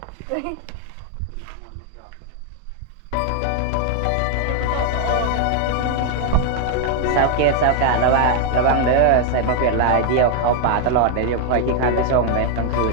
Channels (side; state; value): both; different; correlation 0.00